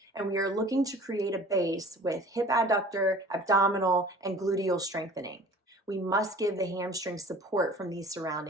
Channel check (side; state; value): both; normal; correlation 0.46